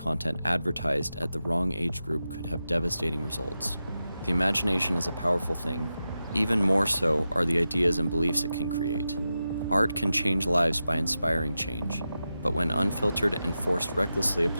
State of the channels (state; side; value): inverted; both; correlation -0.91